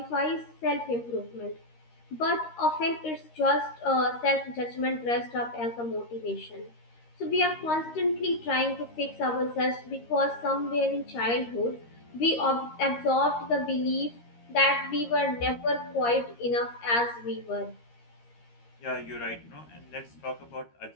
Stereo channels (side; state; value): right; late; 13 ms